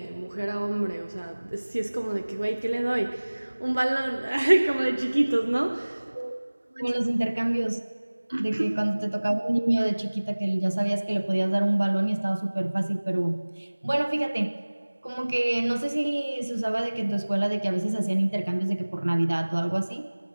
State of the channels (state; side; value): inverted; both; correlation -1.00